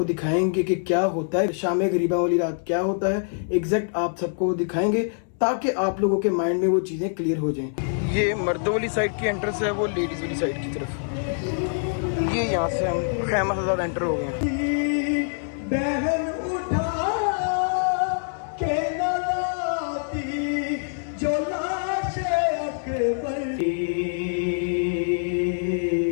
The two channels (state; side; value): silent; right; digital silence